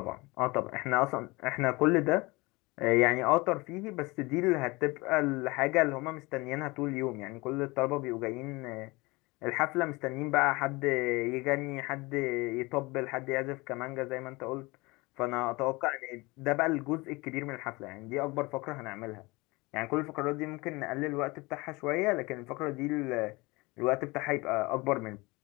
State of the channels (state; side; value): quieter; right; 23.9 dB